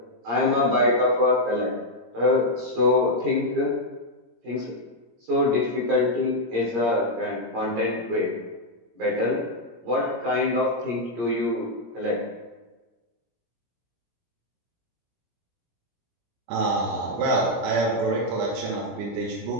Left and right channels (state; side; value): late; left; 17 ms